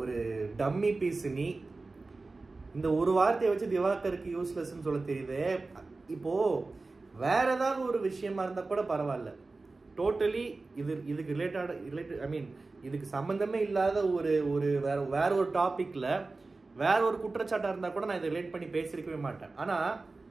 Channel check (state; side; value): quieter; left; 3.6 dB